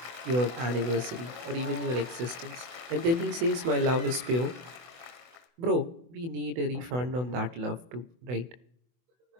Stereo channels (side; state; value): left; late; 24 ms